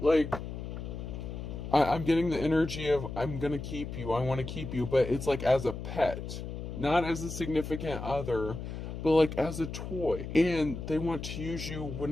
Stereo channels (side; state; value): left; noise; hum, 7 dB below the sound